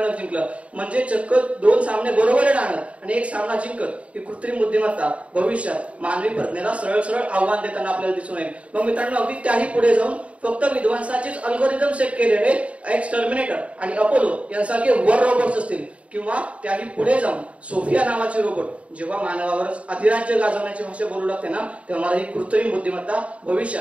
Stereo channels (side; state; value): left; late; 0.064 ms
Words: जिंकलं. म्हणजे चक्क 2 सामने बरोबर राहणार आणि 1 सामना जिंकत ही कृत्रिम बुद्धिमत्ता भविष्यात मानवी प्रज्ञेला सरळ सरळ आव्हान देताना आपल्याला दिसून येईल. मग मित्रांनो, अगदी त्याही पुढे जाऊन फक्त विध्वंसाचेच अल्गोरिदम सेट केलेले एक्स टर्मिनेटर आणि अपोलो यांसारखे वर रोबोट्स असतील, किंवा त्याही पुढे जाऊन सोफिया नावाचे रोबोट जेव्हा मानवावरच अधिराज्य गाजवण्याची भाषा बोलू लागते ना, तेव्हा मला ही कृत्रिम बुद्धिमत्ता